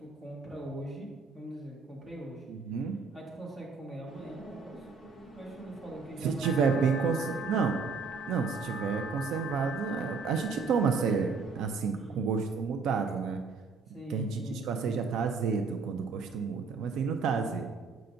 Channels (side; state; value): left; quieter; 4.7 dB